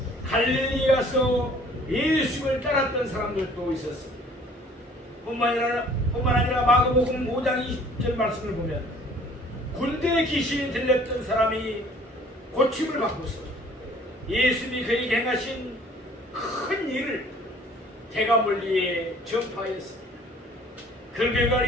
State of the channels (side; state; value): both; normal; correlation 0.54